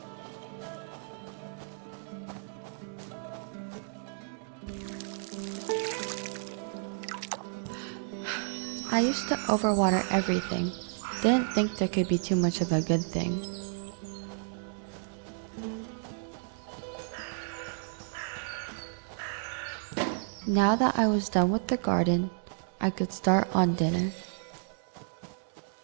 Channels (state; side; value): silent; left; digital silence